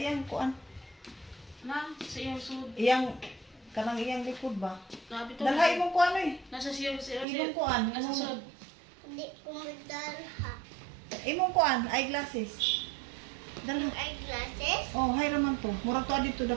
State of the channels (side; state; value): left; drops out; at 7.2 s